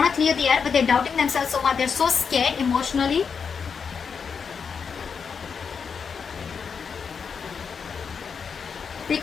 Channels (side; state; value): right; quieter; 6.1 dB